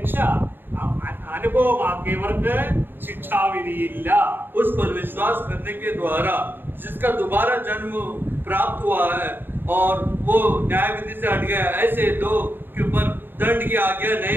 അനുഭവമാക്കിയവർക്ക് ശിക്ഷാവിധിയില്ല. उस पर विश्वास करने के द्वारा जिसका दोबारा जन्म प्राप्त हुआ है और वो न्याय विधि से हट गया, ऐसे लोग के ऊपर दंड की आज्ञा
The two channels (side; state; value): left; late; 0.096 ms